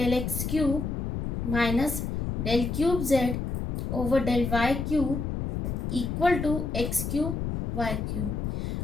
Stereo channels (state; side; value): noise; left; rumble, 3 dB below the sound